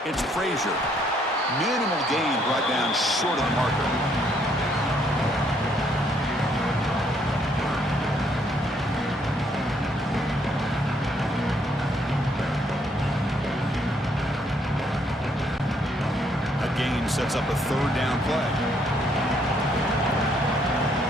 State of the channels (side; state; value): both; normal; correlation 0.69